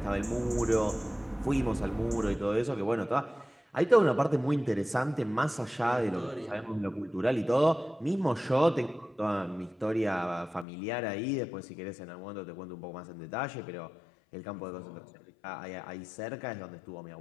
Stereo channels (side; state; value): right; drops out; at 10.7 s